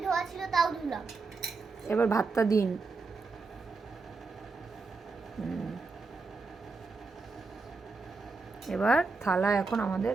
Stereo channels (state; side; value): quieter; left; 4.1 dB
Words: ধোয়া ছিল তাও ধুলাম। এবার ভাতটা দিন। এবার থালা এখন আমাদের